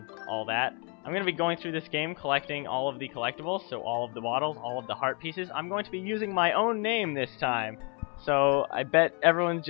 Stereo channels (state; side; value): quieter; right; 35.3 dB